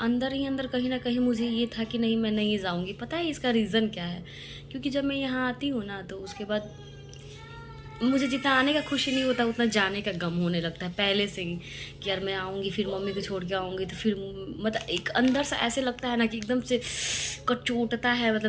ही अंदर कहीं ना कहीं मुझे ये था कि नहीं मैं नहीं जाऊँगी। पता है इसका रीज़न क्या है? क्योंकि जब मैं यहाँ आती हूँ ना, तो उसके बाद मुझे जितना आने का खुशी नहीं होता उतना जाने का गम होने लगता है पहले से ही, कि यार मैं आऊँगी फिर मम्मी को छोड़ के आऊँगी, तो फिर मतलब एक अंदर से ऐसे लगता है ना कि एकदम से कचोटता है।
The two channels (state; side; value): identical; both; correlation 1.00